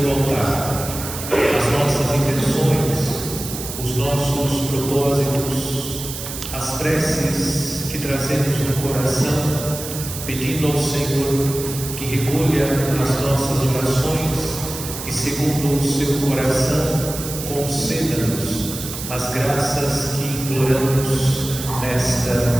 o altar as nossas intenções, os nossos propósitos, as preces que trazemos no coração, pedindo ao Senhor que recolha as nossas orações e, segundo o seu coração, conceda-nos as graças que imploramos nesta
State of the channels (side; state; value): right; noise; hiss, 8 dB below the sound